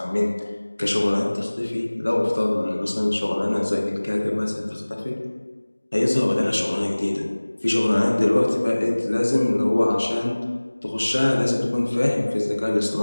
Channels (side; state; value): both; inverted; correlation -1.00